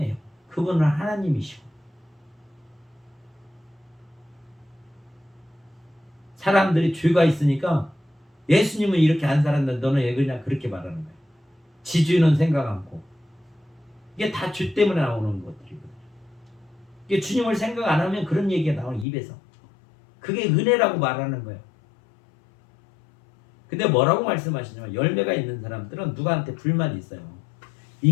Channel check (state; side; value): drops out; right; at 19.1 s